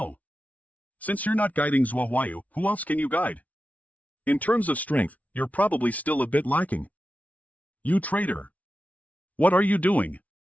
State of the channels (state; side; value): late; right; 0.070 ms